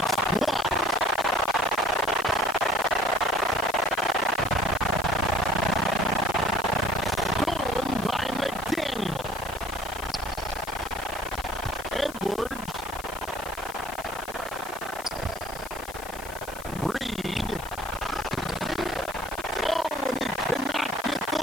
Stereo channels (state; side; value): noise; left; hiss, 16 dB below the sound